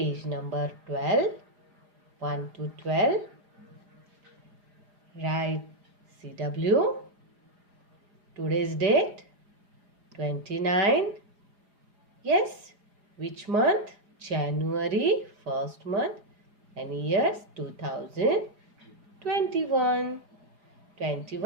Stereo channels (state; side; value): late; left; 4.9 ms